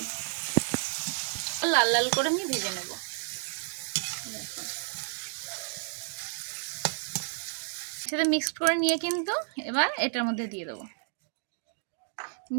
লাল লাল করে আমি ভেজে নেব। সেটা মিক্স করে নিয়ে কিন্তু এবার এটার মধ্যে দিয়ে দেবো,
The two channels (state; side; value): silent; left; 57 dB below the other